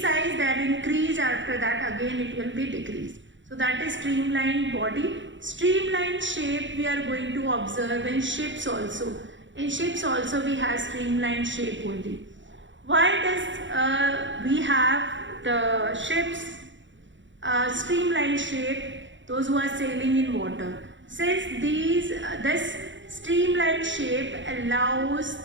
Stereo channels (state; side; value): late; left; 0.54 ms